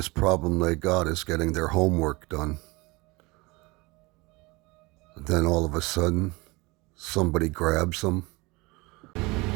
problem they got is getting their homework done. Then all of a sudden, somebody grabs them.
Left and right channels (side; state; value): left; quieter; 24.4 dB